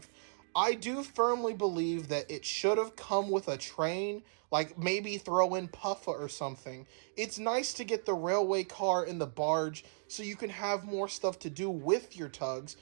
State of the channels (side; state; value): left; silent; digital silence